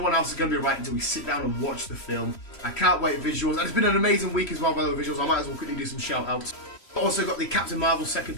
else is going to be right until we sit down and watch the film. I can't wait. Visuals. And it's been an amazing week as well, by the way, visuals. I might as well quickly do some shout outs. Also got the Captain Marvel third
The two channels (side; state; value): right; late; 3.1 ms